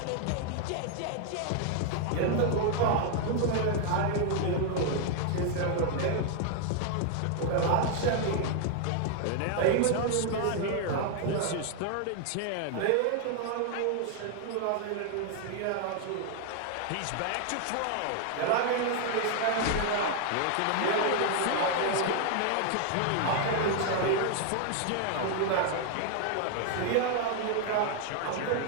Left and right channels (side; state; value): both; different; correlation 0.00